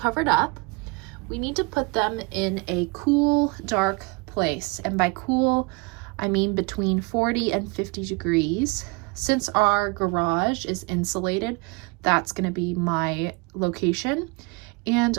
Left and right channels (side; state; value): left; quieter; 28.6 dB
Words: up, we need to put them in a cool, dark place. And by cool, I mean between 40 and 50 degrees. Since our garage is insulated, that's gonna be my location. And